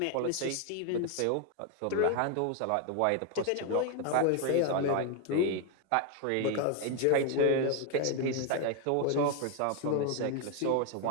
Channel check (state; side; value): different; both; correlation 0.01